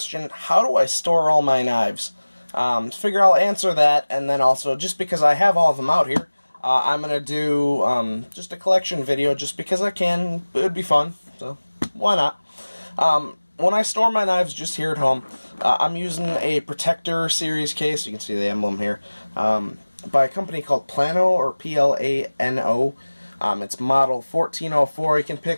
how do I store all my knives? Figure I'll answer that, and then also, just because I have all of them out here, I'm going to do just a collection video just because I can. It would be fun, so why not? When I store my knives just here at home, I'm using a Protector series case, you can see the emblem here, by a company called Plano, or Plano. It's model 1404. You can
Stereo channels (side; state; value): both; inverted; correlation -1.00